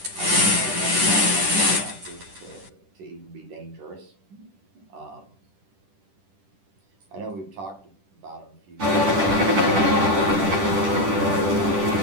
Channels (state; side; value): late; left; 10 ms